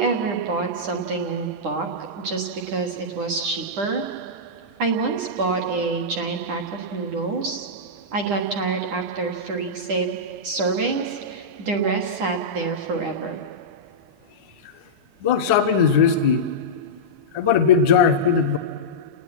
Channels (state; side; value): late; left; 9.9 ms